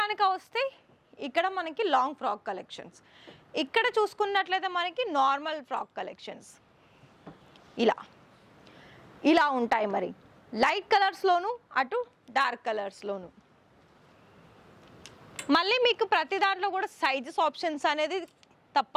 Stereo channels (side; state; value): both; identical; correlation 1.00